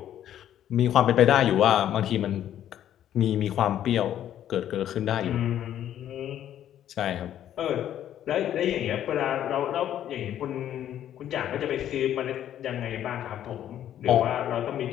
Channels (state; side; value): quieter; right; 11.1 dB